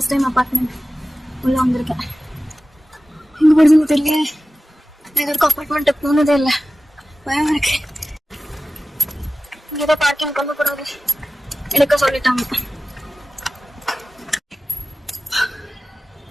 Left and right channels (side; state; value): both; normal; correlation 0.96